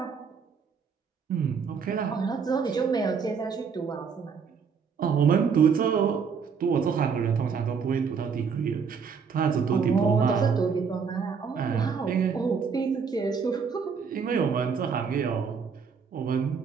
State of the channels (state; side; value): quieter; left; 6.1 dB